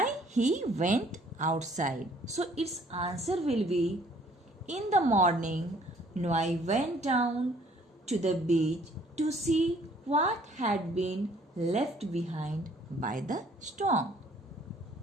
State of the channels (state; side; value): normal; both; correlation 0.59